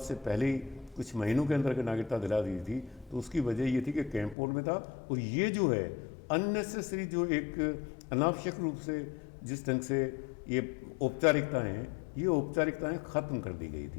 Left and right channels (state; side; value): drops out; right; at 4.4 s